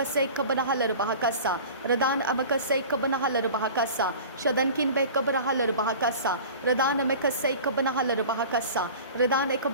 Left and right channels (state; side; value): inverted; both; correlation -0.39